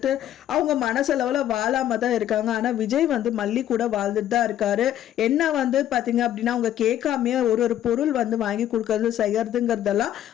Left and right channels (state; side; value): quieter; right; 11.6 dB